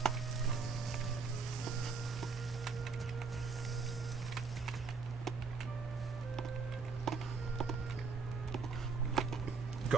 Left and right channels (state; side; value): quieter; left; 4.8 dB